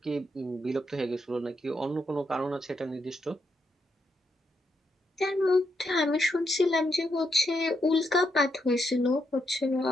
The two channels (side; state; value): both; normal; correlation 0.81